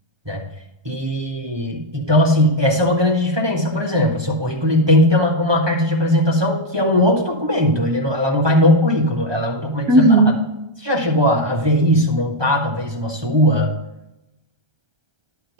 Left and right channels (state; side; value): late; left; 1.2 ms